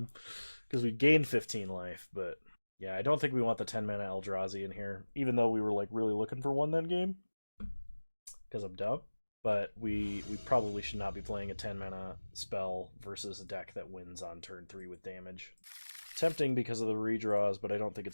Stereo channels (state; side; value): inverted; both; correlation -1.00